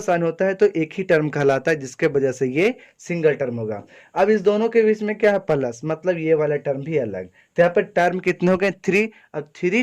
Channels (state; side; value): identical; both; correlation 1.00